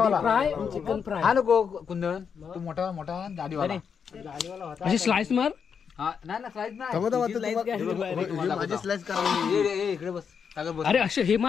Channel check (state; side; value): quieter; right; 6.7 dB